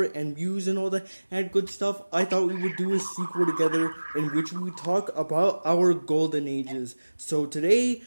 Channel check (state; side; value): inverted; both; correlation -1.00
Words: and views and all that and good stuff, I thought we would do a sequel together in which we would talk about our golden ages. So today,